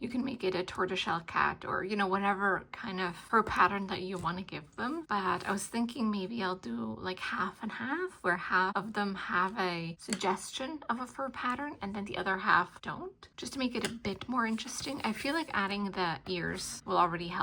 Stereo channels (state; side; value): identical; both; correlation 1.00